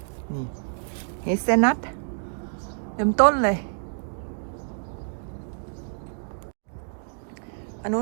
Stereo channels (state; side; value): silent; left; digital silence